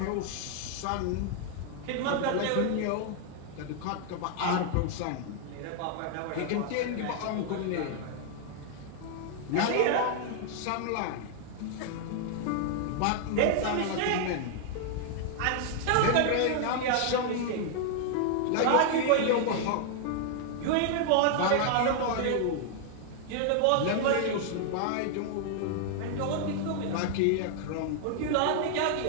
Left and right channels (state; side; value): different; both; correlation 0.00